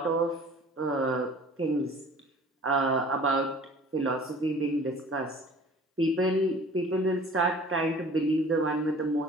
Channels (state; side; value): normal; both; correlation 0.47